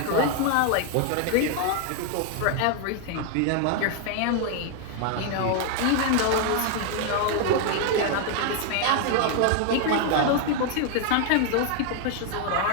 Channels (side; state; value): both; different; correlation 0.00